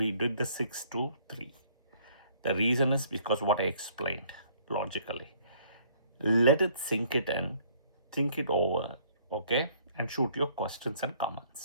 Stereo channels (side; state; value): both; inverted; correlation -0.60